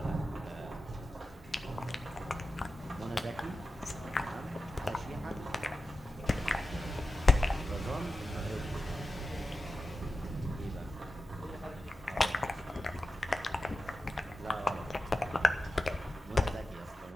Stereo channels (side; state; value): both; normal; correlation 0.93